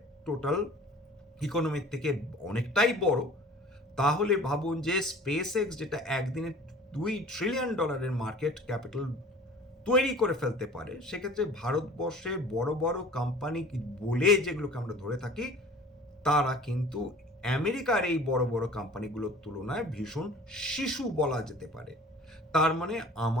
টোটাল ইকোনমিক থেকে অনেকটাই বড়। তাহলে ভাবুন যে স্পেস এক্স যেটা একদিনে $2 ট্রিলিয়ন মার্কেট ক্যাপিটাল তৈরি করে ফেলতে পারে, সেক্ষেত্রে ভারতবর্ষের বড় বড় কোম্পানি বলে যেগুলোকে আমরা ধরে থাকি তারা কিন্তু আমেরিকার এই বড় বড় কোম্পানিগুলোর তুলনায় ভীষণ শিশু বলা যেতে পারে। তার মানে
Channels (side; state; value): both; normal; correlation 0.46